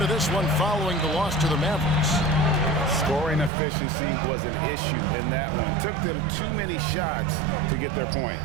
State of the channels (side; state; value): left; drops out; at 3.5 s